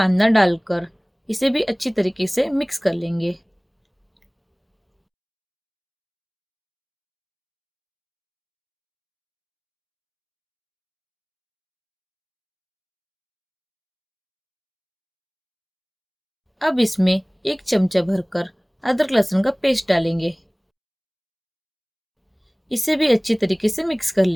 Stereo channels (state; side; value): identical; both; correlation 1.00